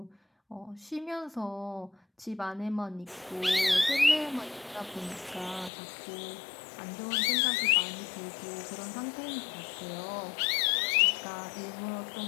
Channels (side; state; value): right; drops out; at 5.7 s